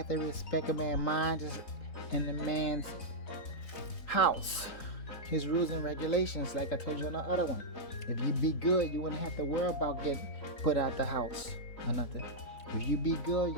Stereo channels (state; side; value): late; right; 4.0 ms